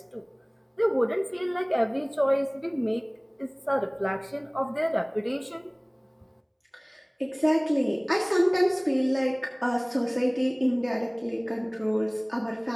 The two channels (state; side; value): identical; both; correlation 1.00